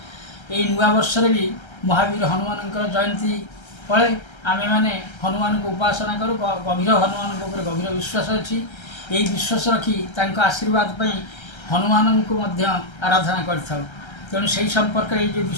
यही नुआ वर्ष भी महावीर हनुमान जयंती फले आमे माने हनुमान को उपासना करूँ। गभीर हनुमान को गभीर विश्वास अच्छी। यही विश्वास रखी आशीर्वाद हनुमान को आराधना कर तेणु से संपर्क जो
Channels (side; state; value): right; late; 1.3 ms